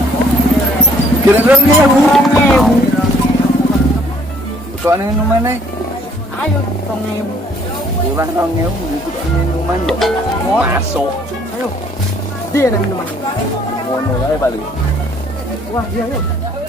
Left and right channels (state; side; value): normal; both; correlation 0.61